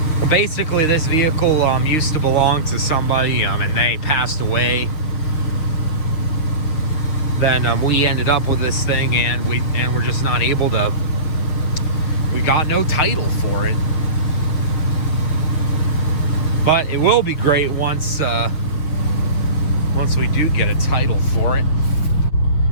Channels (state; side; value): late; right; 6.8 ms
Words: basically this vehicle used to belong to somebody and they passed away. Then we ended up with this thing and we're just not able to, we got no title for it. But it will be great once we do get a title for it.